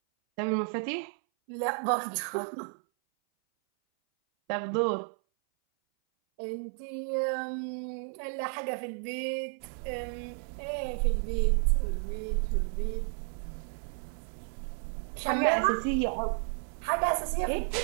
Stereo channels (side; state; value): left; silent; 56 dB below the other